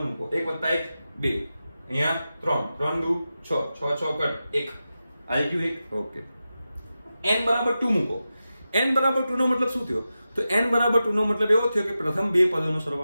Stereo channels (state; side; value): inverted; both; correlation -0.92